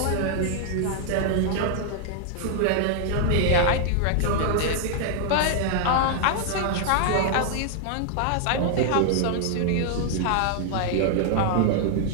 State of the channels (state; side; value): different; both; correlation 0.00